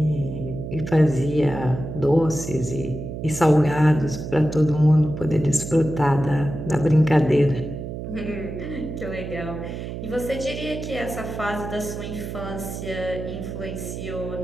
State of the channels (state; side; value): noise; right; hum, 7 dB below the sound